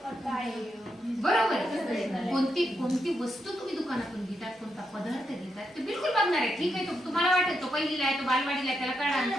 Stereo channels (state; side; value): normal; both; correlation 0.83